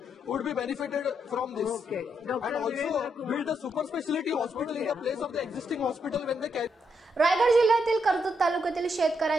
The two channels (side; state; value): both; normal; correlation 0.79